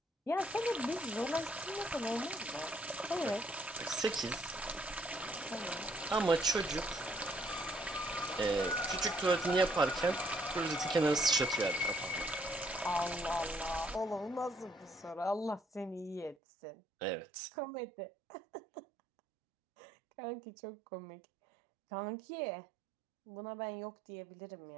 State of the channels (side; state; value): left; drops out; at 16.4 s